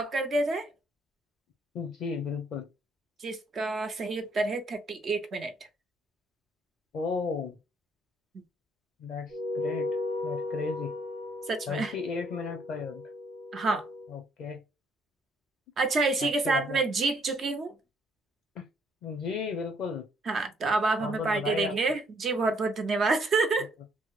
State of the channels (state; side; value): normal; both; correlation 0.67